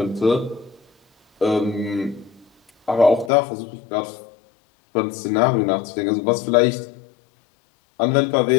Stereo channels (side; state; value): right; drops out; at 3.3 s